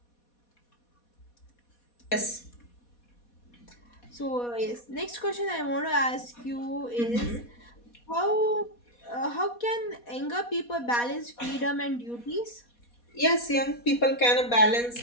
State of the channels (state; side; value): late; right; 4.2 ms